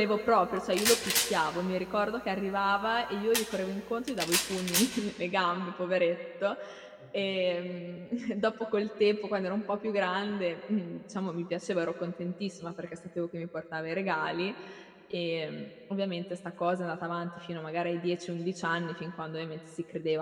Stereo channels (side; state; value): both; identical; correlation 1.00